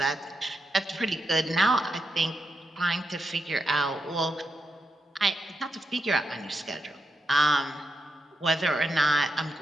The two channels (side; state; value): both; normal; correlation 0.85